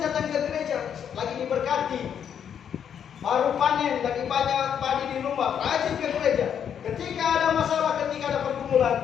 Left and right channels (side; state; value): right; quieter; 8.4 dB